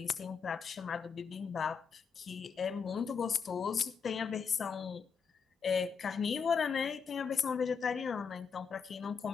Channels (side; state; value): right; quieter; 6.1 dB